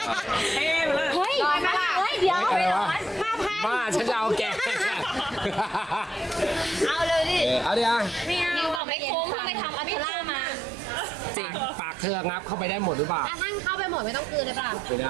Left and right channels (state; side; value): drops out; left; at 8.8 s